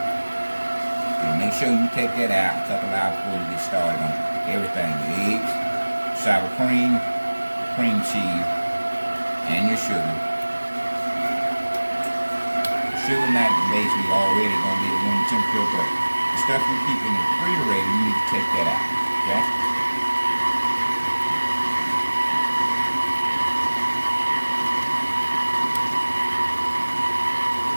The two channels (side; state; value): both; inverted; correlation -1.00